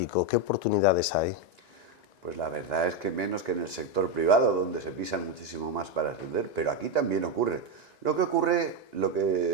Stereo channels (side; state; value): right; late; 1.9 ms